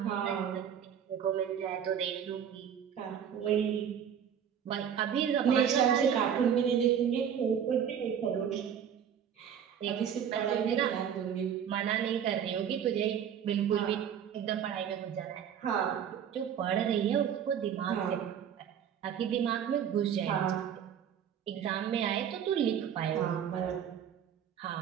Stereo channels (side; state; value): left; quieter; 8.6 dB